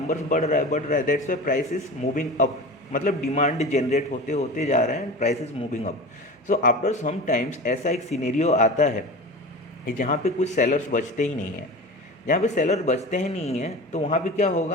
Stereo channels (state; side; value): normal; both; correlation 0.32